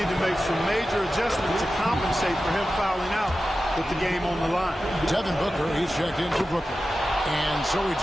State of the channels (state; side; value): normal; both; correlation 0.93